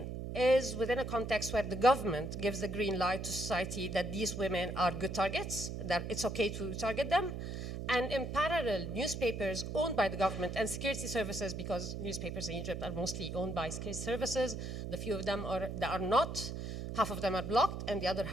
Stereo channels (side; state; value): right; noise; hum, 5 dB below the sound